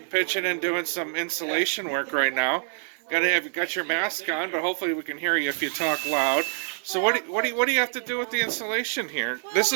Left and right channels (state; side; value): silent; left; 59 dB below the other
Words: pitching and doing some insulation work right now. Got your mask on, but hopefully we can hear you if you talk loud. So what do you have to do with the insulation here? This